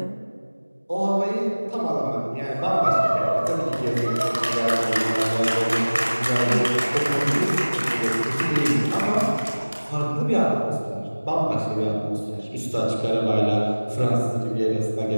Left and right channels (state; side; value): inverted; both; correlation -1.00